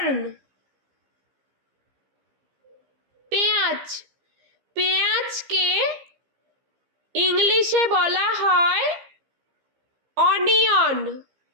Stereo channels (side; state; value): left; late; 15 ms